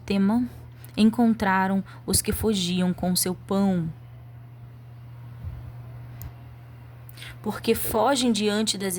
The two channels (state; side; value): identical; both; correlation 1.00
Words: encontraram os que fugiam com seu pão. Porque fogem diante das